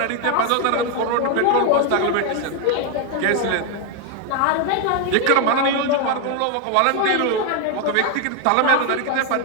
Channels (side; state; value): both; different; correlation 0.01